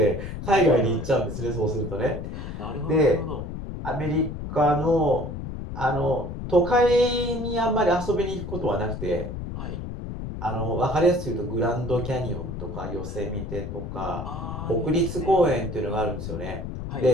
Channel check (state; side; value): noise; left; rumble, 7 dB below the sound